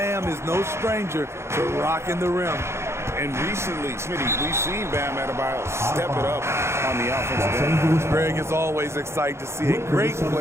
is no stranger to rocking the rim. And recently, Smitty, we've seen Bam Adebayo step it up on the offensive end. Greg is always excited to see a great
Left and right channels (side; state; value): left; late; 0.13 ms